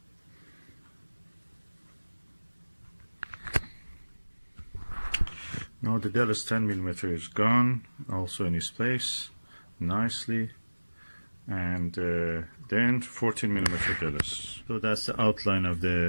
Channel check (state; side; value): inverted; both; correlation -1.00